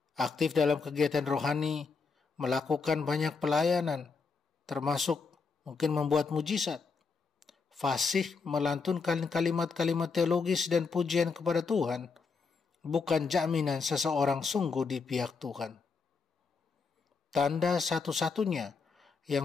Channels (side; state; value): right; quieter; 4.9 dB